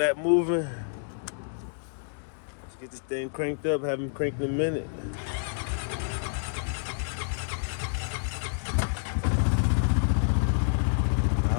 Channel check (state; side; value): silent; right; digital silence